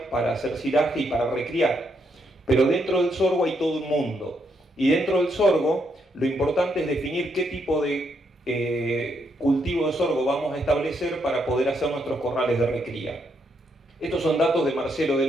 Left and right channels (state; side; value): normal; both; correlation 0.77